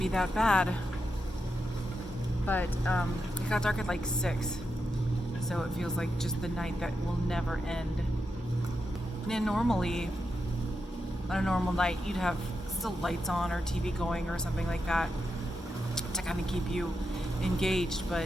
that bad, but it got dark at like 6, so it feels like just the night that will never end. And normally, on a normal night, you'd have still lights on or TV going or something like that to kind of keep you engaged,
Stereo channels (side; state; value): both; normal; correlation 0.87